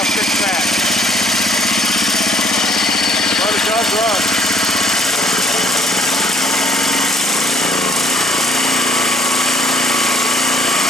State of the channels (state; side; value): normal; both; correlation 0.63